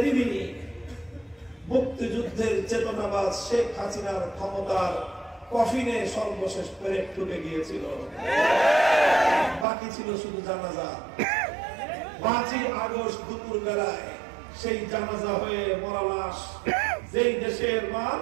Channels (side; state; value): left; drops out; at 9.7 s